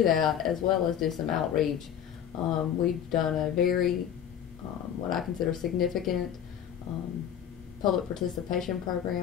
that, as well as do some outreach. We've done a very, what I consider significant public participation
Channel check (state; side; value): quieter; right; 9.3 dB